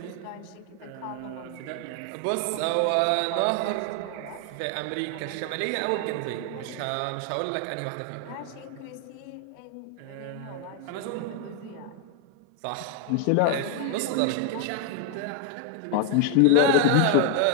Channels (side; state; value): both; different; correlation 0.00